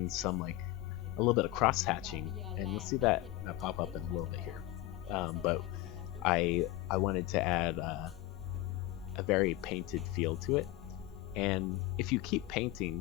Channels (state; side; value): quieter; right; 16.0 dB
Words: some like a little bit of cross hatching, and you see that pop up in a little bit here. But I wanted to add a very painted feel to it, and if you keep painting